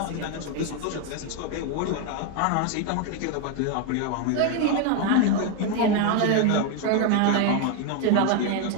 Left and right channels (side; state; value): both; different; correlation 0.01